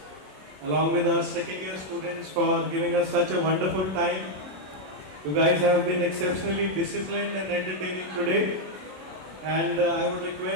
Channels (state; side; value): late; left; 27 ms